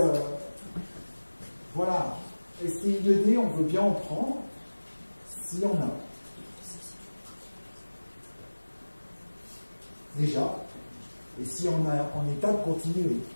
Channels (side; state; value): both; inverted; correlation -1.00